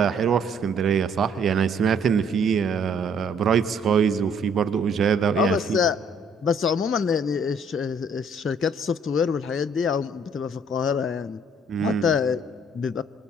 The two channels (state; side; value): normal; both; correlation 0.62